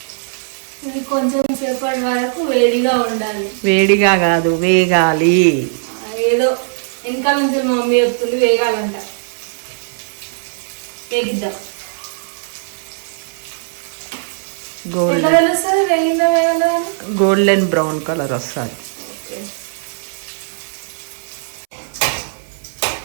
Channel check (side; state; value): left; silent; 67 dB below the other